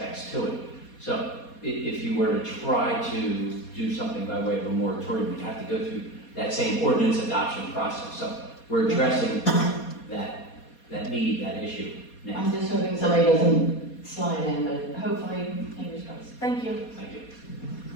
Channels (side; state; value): right; late; 4.2 ms